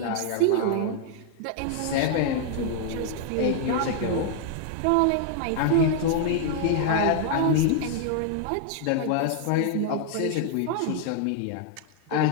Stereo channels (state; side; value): different; both; correlation 0.00